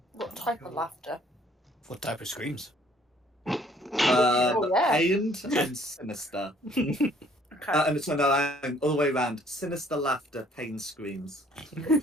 What type of laughter? What type of screams? Oh, yeah. Pained and sinister. Okay. And so no, all the way around. Sinister laughter, pain screams.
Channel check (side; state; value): both; normal; correlation 0.60